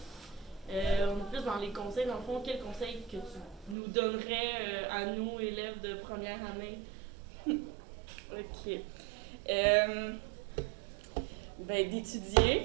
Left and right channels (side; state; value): left; drops out; at 3.8 s